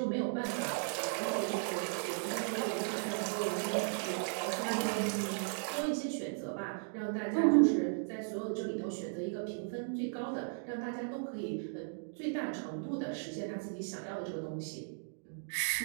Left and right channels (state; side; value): silent; left; digital silence